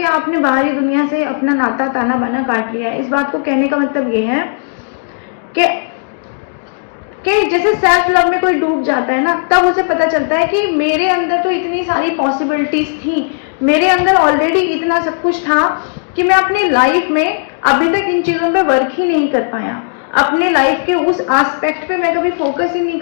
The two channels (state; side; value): silent; right; digital silence